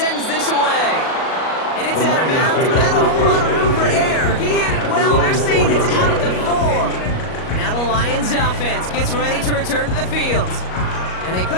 this away. And it's out of bounds without a whole lot of room for error. He hit it well. They're saying it's out at the 4. Now the Lions offense gets ready to return to the field. And they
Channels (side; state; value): right; late; 38 ms